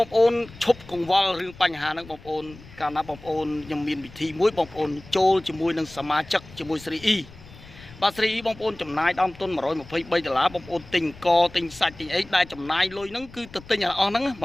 ងប្អូនឈប់កង្វល់រឿងបញ្ហាហ្នឹងបងប្អូនកាលណាបងប្អូនខ្ញុំមានវិធីមួយបងប្អូនចូលជាមួយនឹងសមាជិកជាមួយស្រីអ៊ីបាទស្រីអ៊ីបងប្អូនចំណាយដើមទុន$123បងប្អូនទិញកទិញសាច់ទិញអីដែលចំណាយលុយហ្នឹងគឺទៅទិញអស់ហ្នឹង$123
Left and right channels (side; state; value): left; noise; rumble, 20 dB below the sound